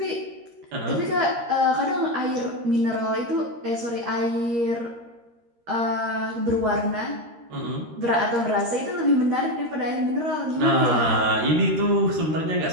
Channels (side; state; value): left; late; 13 ms